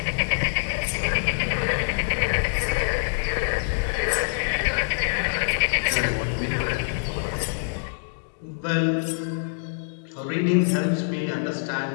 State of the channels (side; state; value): right; silent; digital silence